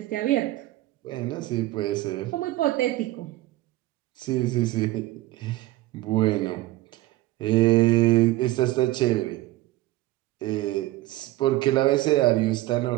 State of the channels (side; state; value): left; quieter; 17.3 dB